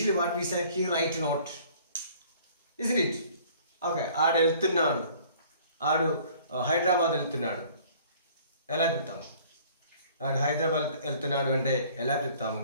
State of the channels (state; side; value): inverted; both; correlation -0.53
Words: what we say, he write note. Isn't it? Okay. ఆడు వెళ్తున్నాడు. ఆడు హైదరాబాద్ వెళ్తున్నాడు. ఎలా చెప్తాము? ఆడు హైదరాబాద్ వెళ్తున్నాడు అంటే ఎలా చెప్తాము?